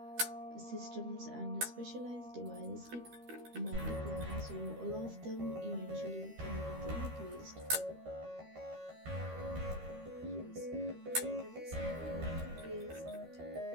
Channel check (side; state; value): left; late; 13 ms